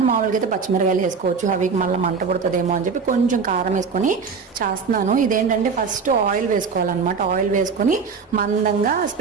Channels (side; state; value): left; quieter; 5.4 dB